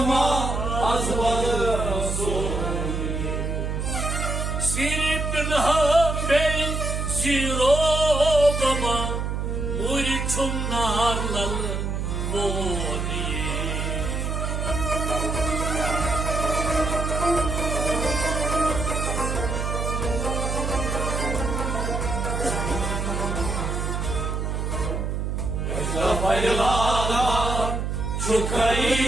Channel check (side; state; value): right; noise; hum, 1 dB below the sound